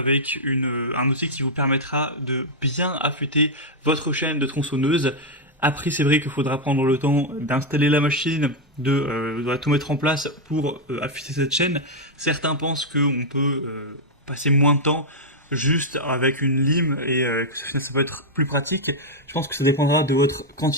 un outil qui vous permettra de bien affûter votre chaîne de tronçonneuse. Après, c'est vrai qu'il faudra prendre le temps d'installer la machine, de tout mettre en place pour affûter cette chaîne. Certains pensent qu'on peut passer moins de temps juste avec une lime et que ça peut être plus pratique. Je pense que ça dépendra de votre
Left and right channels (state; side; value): normal; both; correlation 0.00